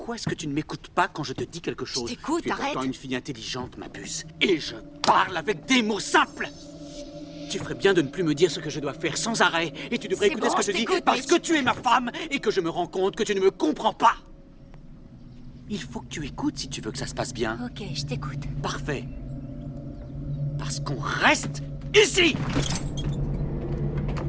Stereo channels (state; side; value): identical; both; correlation 1.00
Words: est-ce que tu ne m'écoutes pas quand je te dis quelque chose? t'écoute, Tu es arrête. pourtant une fille intelligente, ma puce. Et je parle avec des mots simples. Tu ferais bien de ne plus me dire ce que je dois faire sans arrêt. Et tu devrais C'est écouter bon, ce que je je dis t'écoute, parce Mitch. que tu es ma femme et que je me rends compte que tu ne me comprends pas. Il faut que tu écoutes si tu veux que ça se passe bien. Ok, je t'écoute. Parfait. Parce qu'on reste ici.